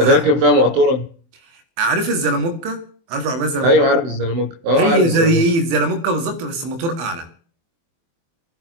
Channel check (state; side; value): late; left; 24 ms